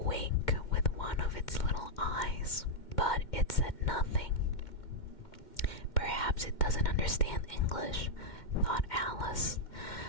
with one of its little eyes, but it said nothing. Perhaps it doesn't understand English, thought Alice.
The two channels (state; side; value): late; right; 2.1 ms